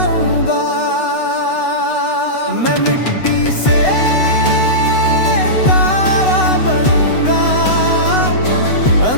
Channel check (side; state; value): right; late; 8.0 ms